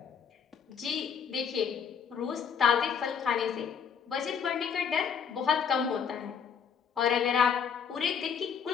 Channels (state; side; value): quieter; right; 7.1 dB